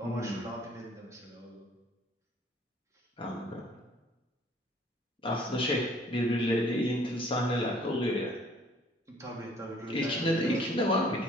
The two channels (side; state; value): both; normal; correlation 0.57